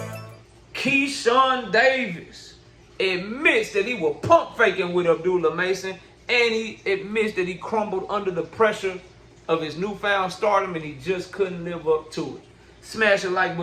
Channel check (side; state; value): both; identical; correlation 1.00